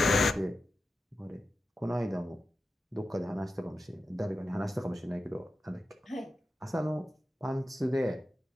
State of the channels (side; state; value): both; normal; correlation 0.91